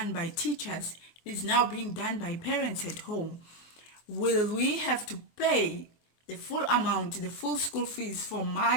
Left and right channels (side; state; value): right; late; 23 ms